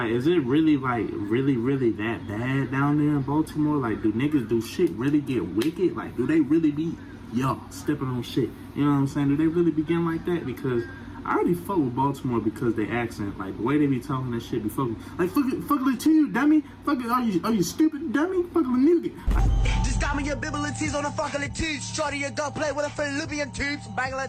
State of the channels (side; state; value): both; identical; correlation 1.00